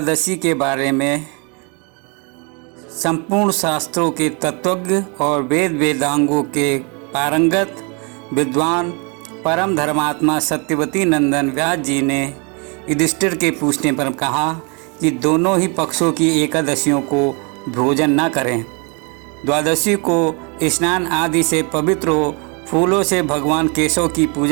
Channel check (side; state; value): left; quieter; 33.3 dB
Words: के बारे में संपूर्ण शास्त्रों के तत्वज्ञ और वेद वेदांगों के पारंगत विद्वान परम धर्मात्मा सत्यवती नंदन व्यास जी ने युधिष्ठिर के पूछने पर कहा कि दोनों ही पक्षों की एकादशियों को भोजन न करें। द्वादशी को स्नान आदि से पवित्र हो, फूलों से भगवान केशव की